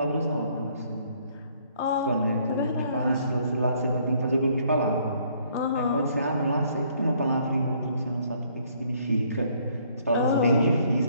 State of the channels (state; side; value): inverted; both; correlation -0.64